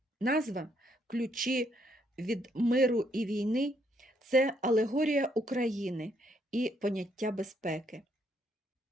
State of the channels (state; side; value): normal; both; correlation 0.72